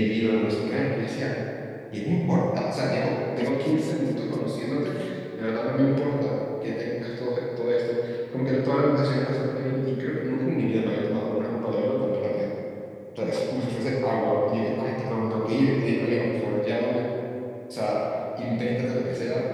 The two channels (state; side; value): identical; both; correlation 1.00